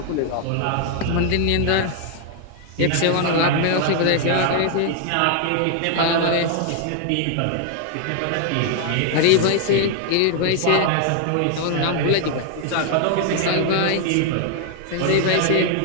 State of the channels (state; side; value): different; both; correlation 0.00